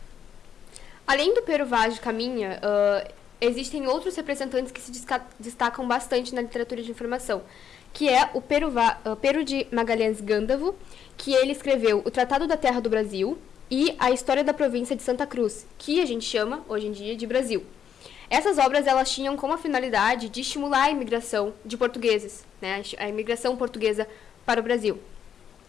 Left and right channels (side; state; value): right; quieter; 8.5 dB